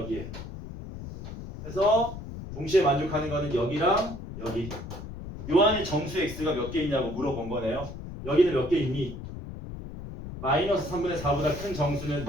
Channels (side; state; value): left; noise; rumble, 10 dB below the sound